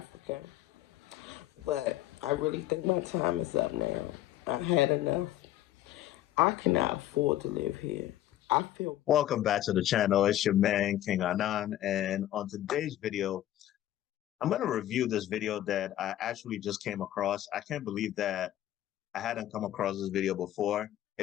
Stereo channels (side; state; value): right; quieter; 13.3 dB